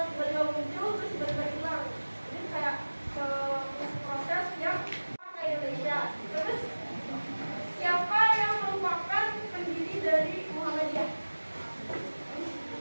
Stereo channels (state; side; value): inverted; both; correlation -1.00